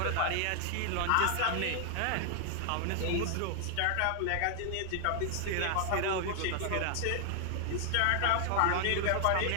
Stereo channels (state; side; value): different; both; correlation 0.00